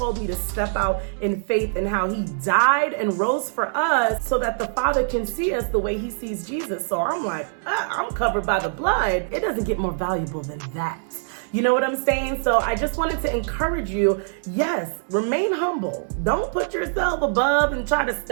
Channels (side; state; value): left; silent; 63 dB below the other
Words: me to step out in faith, and how He died and rose for us so that the Father can see us the way He sees Jesus. So I'm like, I'm covered by the blood. It doesn't get more valuable than that. You know what I'm saying? So I just wanted to encourage you, yes, remain humble. Don't put yourself above and try to